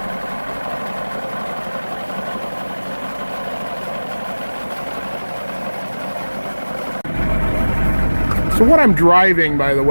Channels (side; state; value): both; inverted; correlation -1.00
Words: So what I'm driving, by the